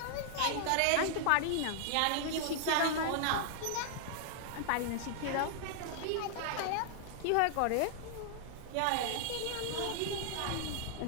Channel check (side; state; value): both; different; correlation -0.01